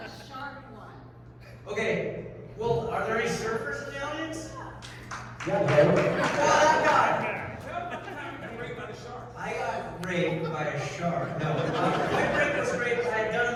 Okay. Well, are there any surfers in the audience? Yeah, bro. I got raped by a shark. No, Point Break was great. I had done a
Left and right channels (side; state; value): both; identical; correlation 1.00